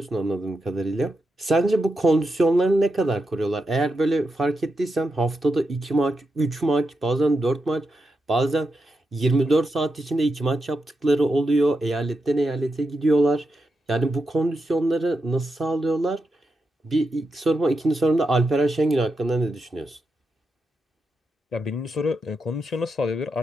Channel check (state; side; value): normal; both; correlation 0.86